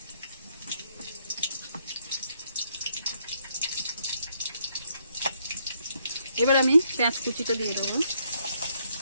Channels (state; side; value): inverted; both; correlation -0.72